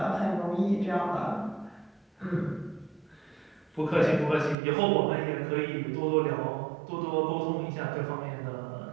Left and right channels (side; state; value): left; drops out; at 4.5 s